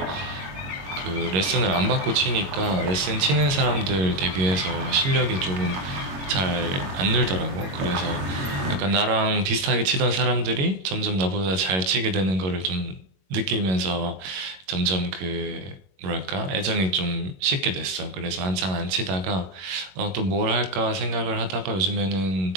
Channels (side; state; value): left; late; 22 ms